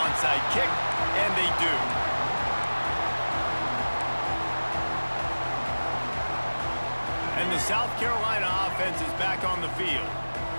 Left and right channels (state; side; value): inverted; both; correlation -1.00